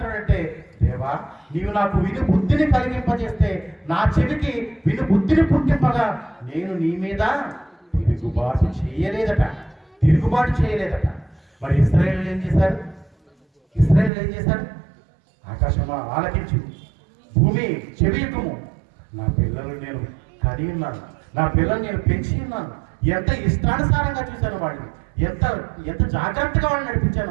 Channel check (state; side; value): drops out; left; at 14.1 s